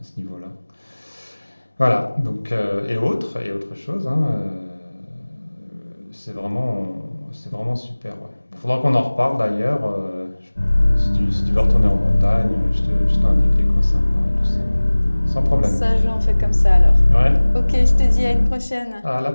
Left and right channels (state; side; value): inverted; both; correlation -1.00